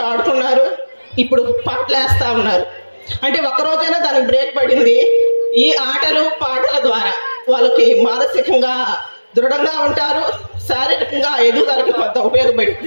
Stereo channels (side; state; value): both; inverted; correlation -1.00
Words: ఆడుకున్నారు, ఇప్పుడు పాటలు వేస్తూ ఉన్నారు. అంటే ఒక్కరోజైనా దానికి బ్రేక్ పడింది. ఈ ఆటలు పాటల ద్వారా వాళ్ళకి మానసికంగా దృఢంగా ఉంటారు, శారీరకంగా ఎదుగుదలకి కొంత